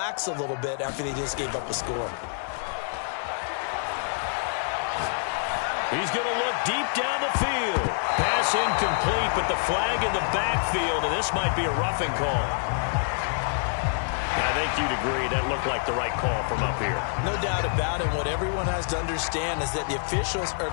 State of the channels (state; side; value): silent; right; digital silence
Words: a little bit after they just gave up a score. He's going to look deep down the field. Pass incomplete, but the flag in the backfield, and this might be a roughing call. I think you'd agree that looked like the right call from up here. No doubt about it. What everyone has to understand is that the officials are